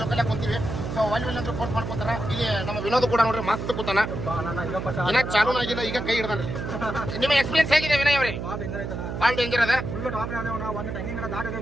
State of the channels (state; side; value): noise; right; hum, 5 dB below the sound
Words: ಜೊಕಾಲಿ ಕುಂತೀವಿ ಸೊ ಅಲ್ಲಿ ಅಂದ್ರೆ ಫೋರ್ಸ್ ಮಾಡ್ಕೊತಾರ ಇಲ್ಲಿ ನಮ್ಮ ವಿನೋದ್ ಕೂಡ ನೋಡ್ರಿ ಮಸ್ತ್ ಕೂತಾನ ಇನ್ನ ಚಾಲೂ ಆಗಿಲ್ಲ ಈಗ ಕೈ ಹಿಡ್ದಾನ್ರಿ ನಿಮ್ಮ ಎಕ್ಸ್ಪೀರಿಯನ್ಸ್ ಹೇಗಿದೆ ವಿನಯ್ ಅವ್ರಿ ಭಾಳ ಡೇಂಜರ್ ಅದ